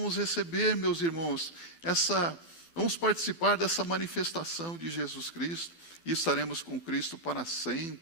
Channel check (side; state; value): right; late; 11 ms